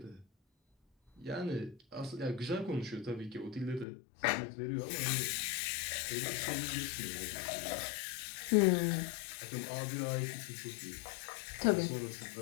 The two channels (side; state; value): right; drops out; at 3.9 s